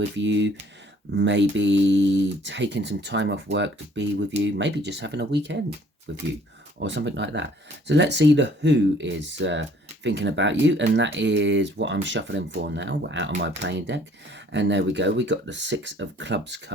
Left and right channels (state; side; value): normal; both; correlation 0.58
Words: you, maybe taking some time off work to be with you, maybe just having a weekend with you or something like that. So let's see the who is thinking about you, and that is what I'm shuffling for now. We're out of my playing deck, and there we go. We got the Six of Clubs